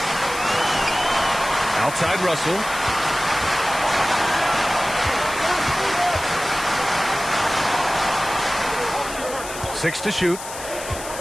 Outside Russell. 6 to shoot.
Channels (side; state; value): left; noise; hiss, 11 dB below the sound